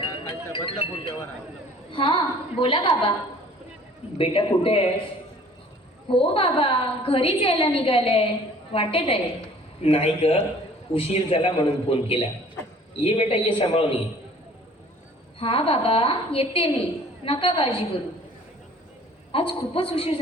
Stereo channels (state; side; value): normal; both; correlation 0.52